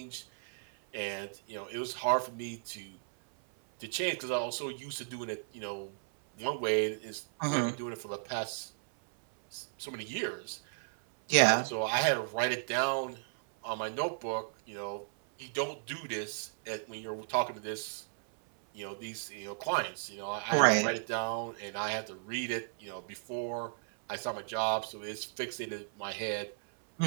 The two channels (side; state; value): left; silent; 55 dB below the other